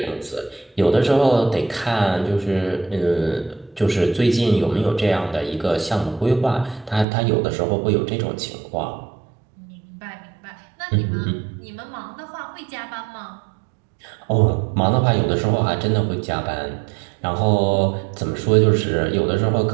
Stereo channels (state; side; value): drops out; left; at 7.1 s